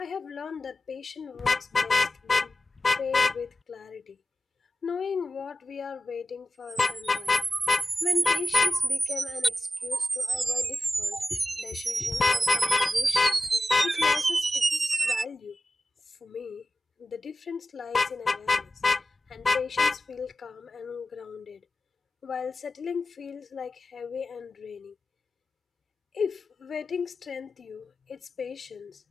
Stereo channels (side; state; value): both; normal; correlation 0.93